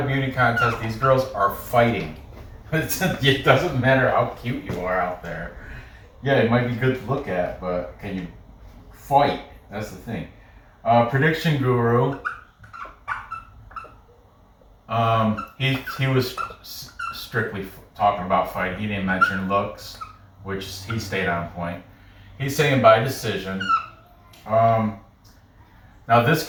beauty contest. These girls are fighting. It doesn't matter how cute you are out there. Yeah, it might be good to look at, but can you fight? That's the thing. Prediction Guru. He was strictly talking about fighting. He didn't mention looks, which he stayed on point. He's saying by decision. Now this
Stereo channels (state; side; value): identical; both; correlation 1.00